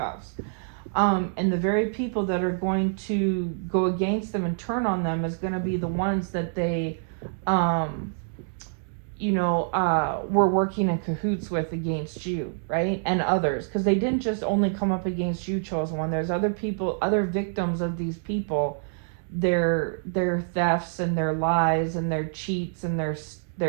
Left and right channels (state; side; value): silent; left; 61 dB below the other